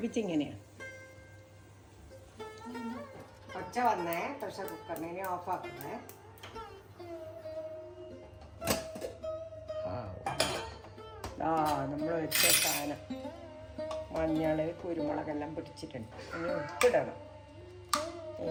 ഒച്ച വന്നേ പ്രഷർ കുക്കറിനെ. ഇനി ഓഫാക്കുന്നേ. നമ്മൾ വെച്ച സാധനം മഞ്ഞൾ കുരുമുളകെല്ലാം പിടിച്ചിട്ടുണ്ട്. ഇനി ഉപ്പിടണം.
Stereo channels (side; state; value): both; identical; correlation 1.00